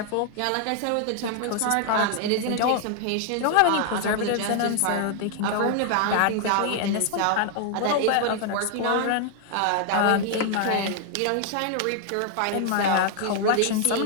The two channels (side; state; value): both; different; correlation 0.00